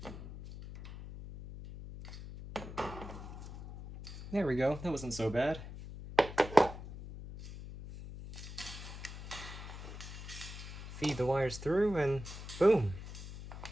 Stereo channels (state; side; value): noise; left; hum, 11 dB below the sound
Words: There we go, that wasn't so bad. Feed the wires through and boom!